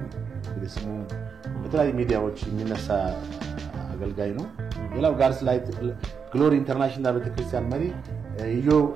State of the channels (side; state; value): left; quieter; 6.4 dB